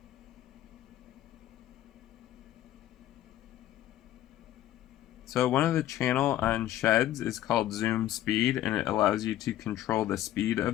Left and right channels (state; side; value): quieter; right; 13.3 dB